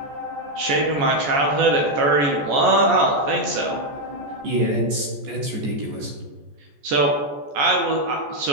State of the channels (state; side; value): late; left; 14 ms